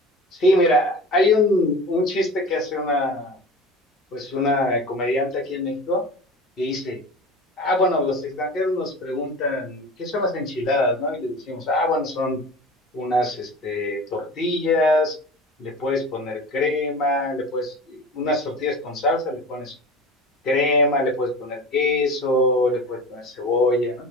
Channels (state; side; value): normal; both; correlation 0.35